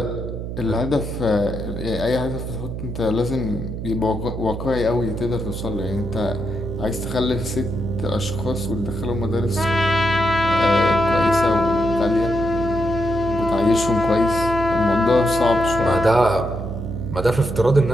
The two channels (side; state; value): right; noise; hum, 6 dB below the sound